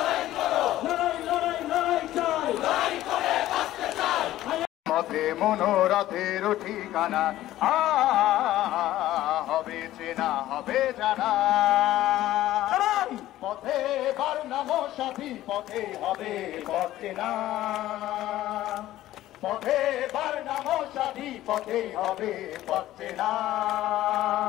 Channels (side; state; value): right; quieter; 14.5 dB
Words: লড়াই লড়াই লড়াই চাই, পথে মনোরথের ঠিকানা হবে চেনা হবে জানা, পথে বার নাম সাথী পথে হবে পথ চেনা, পথে বার নাম সাথী পথে হবে পথ চেনা।